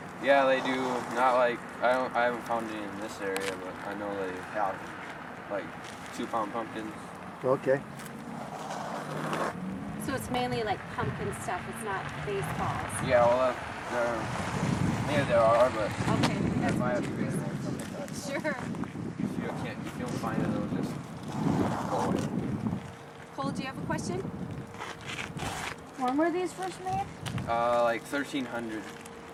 Yeah, they do. Not like I haven't found any in this area, but I know they have like 2-pound pumpkins. okay. So it's mainly like pumpkin stuff, it's not baseballs. Yeah, well, there are, but Okay. if I have to be something like that. Sure. If you don't find it, it'll just go away. Cole, do you have a question? When were these first made? Like 1,300.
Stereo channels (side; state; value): both; identical; correlation 1.00